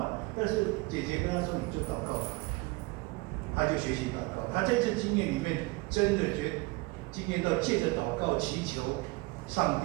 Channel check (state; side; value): quieter; left; 23.7 dB